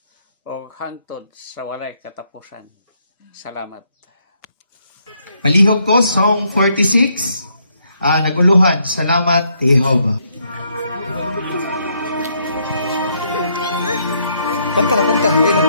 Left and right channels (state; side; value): inverted; both; correlation -0.73